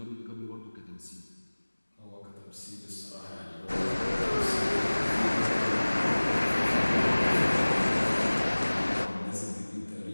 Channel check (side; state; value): both; inverted; correlation -1.00